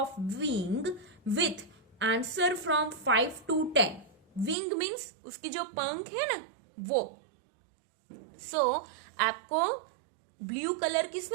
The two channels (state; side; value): drops out; left; at 4.5 s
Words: wing with answer from 5 to 10. Wing means उसकी जो पंख है ना वो. सो आपको ब्लू कलर